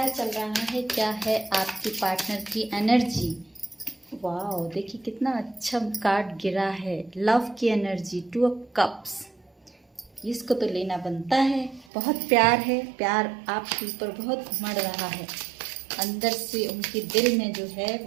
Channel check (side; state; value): left; drops out; at 11.9 s